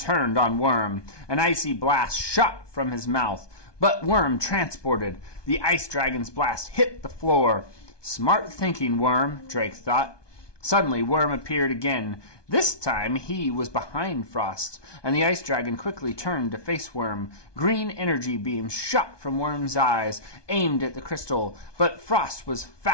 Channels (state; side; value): late; right; 1.2 ms